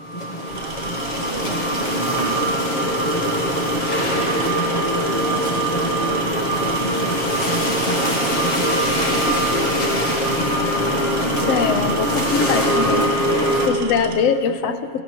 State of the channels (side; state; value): right; late; 7.2 ms